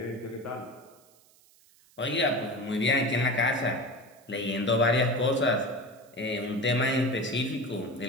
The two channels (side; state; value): right; noise; hiss, 29 dB below the sound